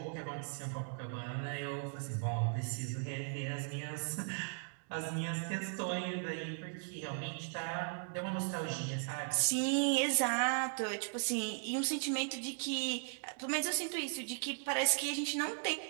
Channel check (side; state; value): left; silent; 53 dB below the other